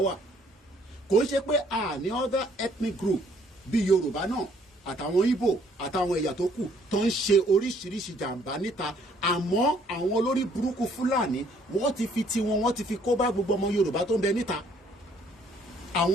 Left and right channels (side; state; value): both; normal; correlation 0.63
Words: wà. Kò ń ṣe pé àní other ethnic group bíi Yorùbá náà àtàwọn Ìgbò àtàwọn ẹ̀yà tó kù tó ń ṣe oríṣiríṣi jàǹbá níta àmọ́ àwọn olórí burúkú Fúlàní wọ́n ti fi tiwọn wọ́n ti fi kó bá gbogbo ọmọ Yorùbá tó ń bẹ níta.